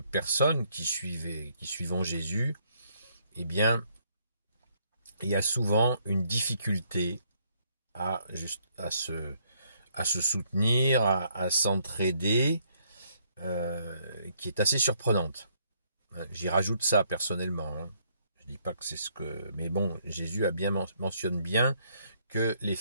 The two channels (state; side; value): inverted; both; correlation -0.69